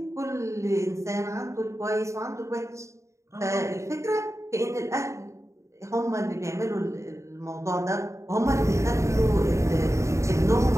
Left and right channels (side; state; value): left; late; 0.14 ms